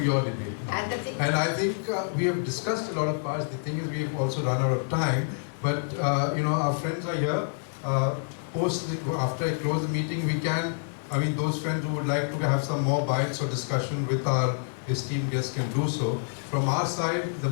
your debate. And I think we have discussed a lot of parts. The thing is, we have also run out of time, but our friends are here. After I close the meeting, those friends who would like to have some more bites or discussion with our esteemed guests can do so. From our side, the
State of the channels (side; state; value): right; silent; digital silence